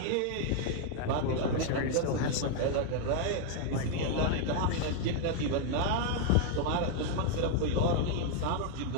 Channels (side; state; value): both; different; correlation 0.00